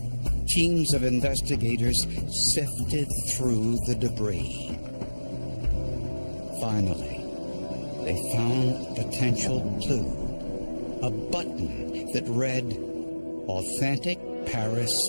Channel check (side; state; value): both; inverted; correlation -1.00